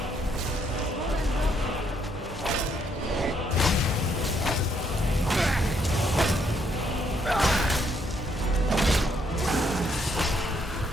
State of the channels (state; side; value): normal; both; correlation 0.72